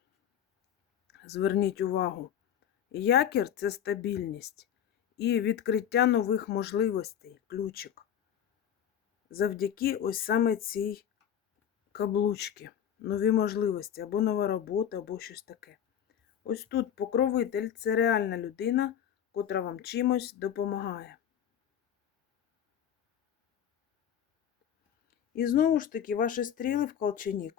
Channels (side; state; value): right; quieter; 9.4 dB